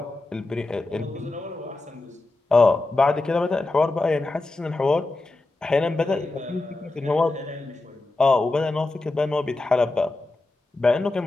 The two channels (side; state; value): right; quieter; 3.1 dB